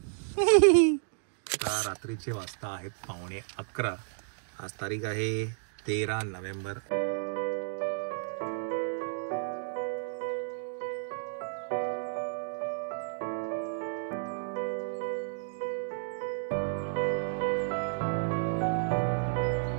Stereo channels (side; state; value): left; silent; digital silence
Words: रात्रीचे वाजता आहेत 11:15. आज तारीख आहे 13 नोव्हेंबर.